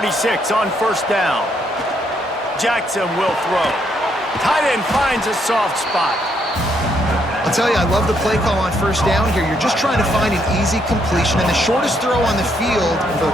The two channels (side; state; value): both; normal; correlation 0.74